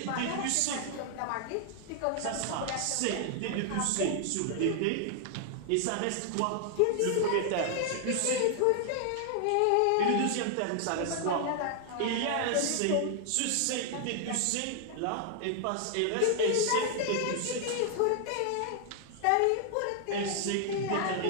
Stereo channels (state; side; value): different; both; correlation 0.00